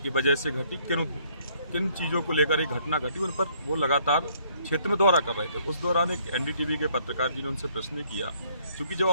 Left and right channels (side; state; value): both; inverted; correlation -0.65